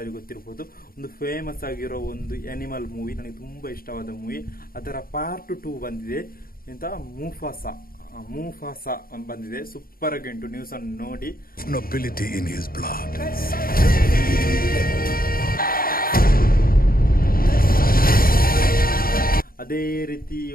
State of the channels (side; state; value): right; late; 0.42 ms